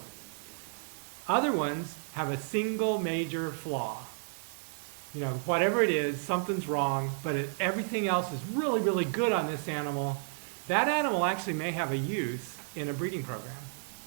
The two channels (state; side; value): quieter; left; 37.2 dB